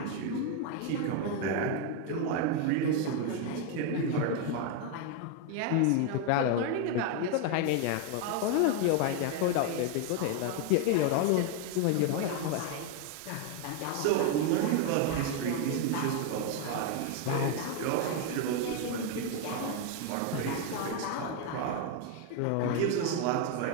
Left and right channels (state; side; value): different; both; correlation 0.01